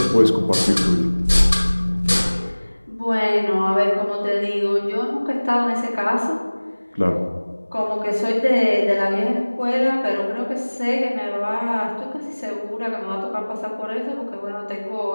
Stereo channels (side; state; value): both; inverted; correlation -1.00